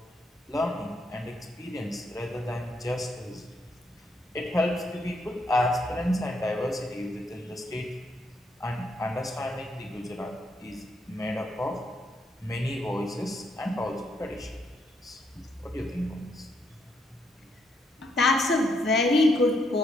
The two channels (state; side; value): normal; both; correlation 0.76